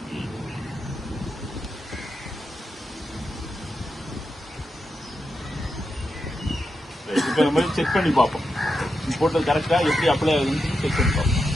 இப்போ நம்ம செக் பண்ணி பார்ப்போம். போட்டது கரெக்டாக எப்படி அப்ளை ஆகுதுன்னு செக் பண்ணி பார்ப்போம்.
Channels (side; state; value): both; normal; correlation 0.87